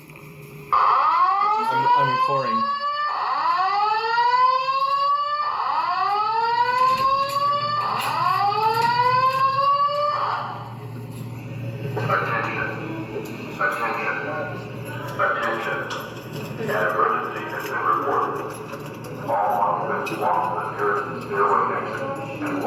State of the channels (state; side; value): identical; both; correlation 1.00